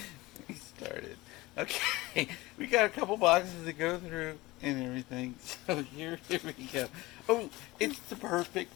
we started. Okay, we got a couple boxes to go through and everything. So here we go. Oh, it's the perfect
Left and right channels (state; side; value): quieter; right; 20.5 dB